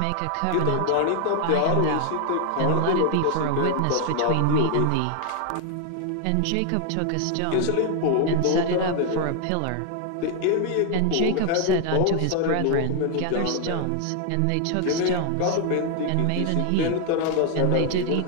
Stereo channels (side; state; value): both; different; correlation 0.00